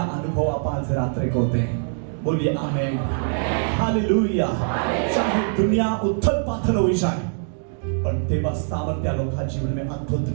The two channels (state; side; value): silent; left; 60 dB below the other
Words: अनुभव आपण आज रात्री होते हैं, बोलिए आमेन, हालेलुया। चाहे दुनिया उथल पाथल हो जाए पण तेव्हा सामर्थ्य लोका जीवन में अद्भुत